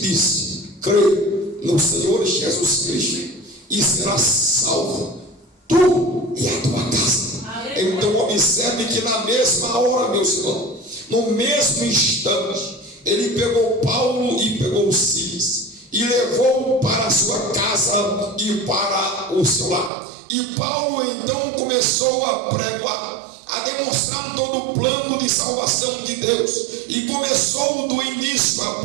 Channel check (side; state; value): left; drops out; at 19.9 s